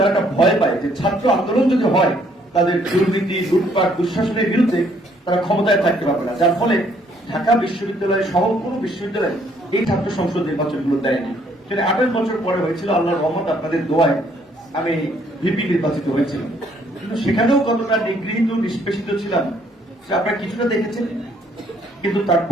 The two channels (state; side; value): normal; both; correlation 0.66